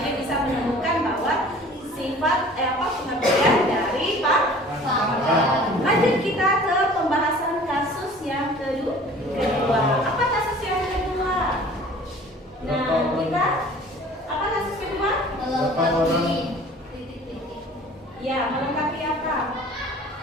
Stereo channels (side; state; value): both; normal; correlation 0.47